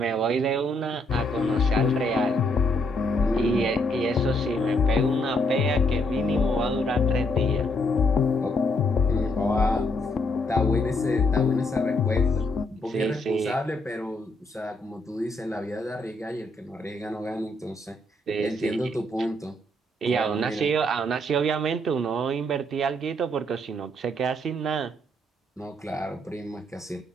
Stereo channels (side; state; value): both; normal; correlation 0.72